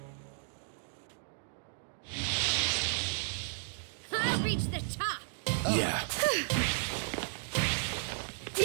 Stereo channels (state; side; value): silent; left; digital silence